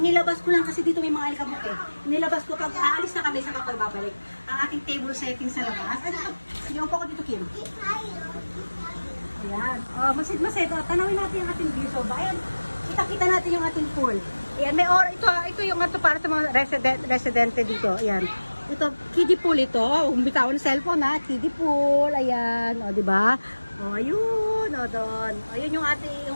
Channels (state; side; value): inverted; both; correlation -1.00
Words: ko lang kasi dito may mga alikabok Inilabas ko pag aalis na kami sa kapag babalik. Ang ating table setting sa labas. Yung pa ko dito, Kim. Ayan. Masid-masid. Tanawin natin yung ating view. So, ayan. Kita natin yung ating pool. Ayan. Ito yung para sa mga residente dito. Ayan. Ito, kiddie pool ito. Bitaw ng cellphone ha. Kiddie pool. Ayan. Diba? Ayun. Doon. Ayun yung ating,